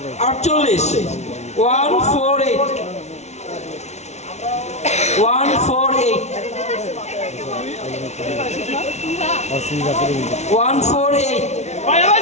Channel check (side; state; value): right; late; 0.32 ms